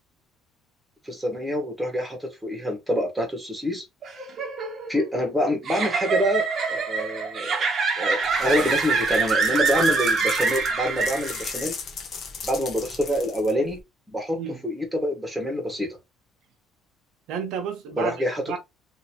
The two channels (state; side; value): normal; both; correlation 0.69